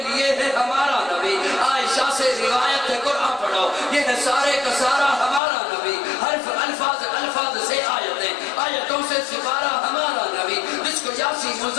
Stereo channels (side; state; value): right; drops out; at 5.4 s